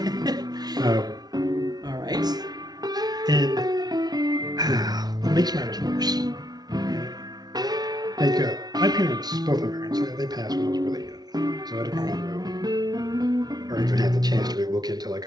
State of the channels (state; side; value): late; left; 0.19 ms